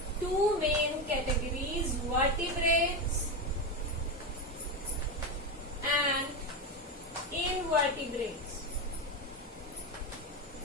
two main categories, vertebrates and invertebrates.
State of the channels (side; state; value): both; normal; correlation 0.14